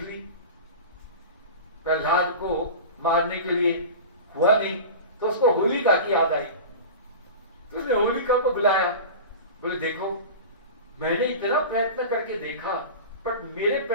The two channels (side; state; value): both; inverted; correlation -0.31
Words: ली, प्रहलाद को मारने के लिए हुआ नहीं, तो उसको होलिका की याद आई। तो उसने होलिका को बुलाया, बोले देखो मैंने इतना प्रयत्न करके देखा पर मेरे